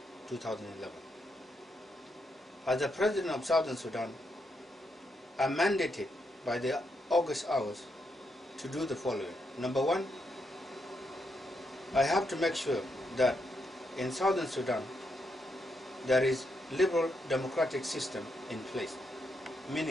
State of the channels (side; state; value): both; normal; correlation 0.80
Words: 2011. As the President of Southern Sudan, I am mandated by the August hours to do the following. Number one, I have to make sure that in Southern Sudan there is liberal democratic system in place,